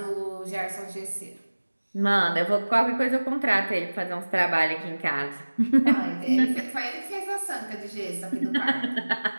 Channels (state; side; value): inverted; both; correlation -1.00